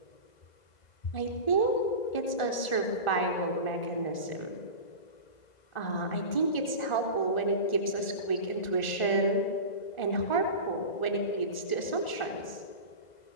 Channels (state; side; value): late; right; 1.4 ms